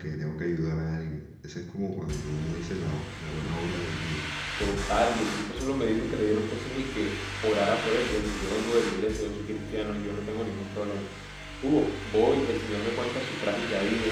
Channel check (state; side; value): identical; both; correlation 1.00